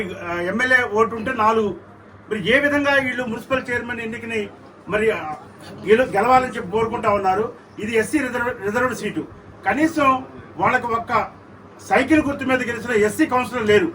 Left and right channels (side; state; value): both; identical; correlation 1.00